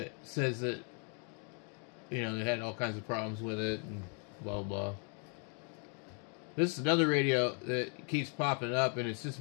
says that, you know, they had all kinds of problems with it and blah blah. This is another radio that keeps popping up, and it's just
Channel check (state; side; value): quieter; right; 39.9 dB